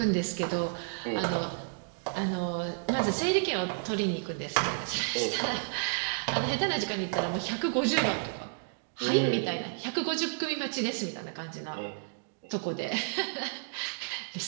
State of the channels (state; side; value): silent; left; digital silence